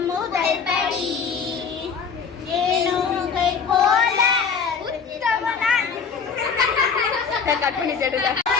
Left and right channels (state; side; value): quieter; right; 6.0 dB